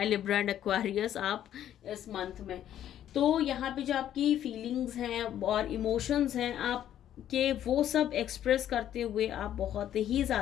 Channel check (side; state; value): right; quieter; 11.1 dB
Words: लिब्रा एंड एक्वेरियस आप इस मंथ में। तो यहाँ पे जो आपकी फीलिंग्स हैं और इमोशंस हैं आपके, वो सब एक्सप्रेस करते हुए आप बहुत ही